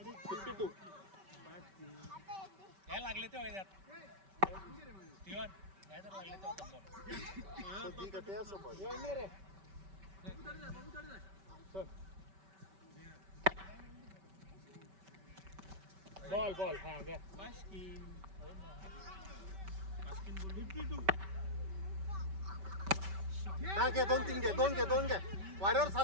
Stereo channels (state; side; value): late; left; 5.2 ms